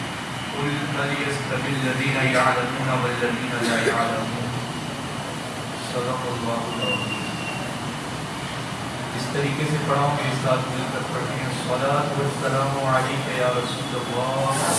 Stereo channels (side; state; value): both; identical; correlation 1.00